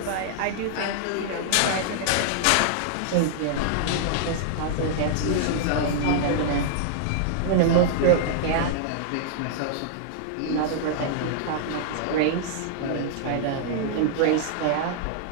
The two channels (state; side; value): different; both; correlation -0.01